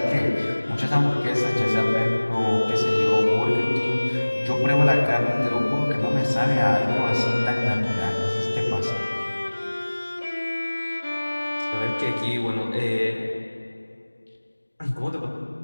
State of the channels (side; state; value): both; inverted; correlation -1.00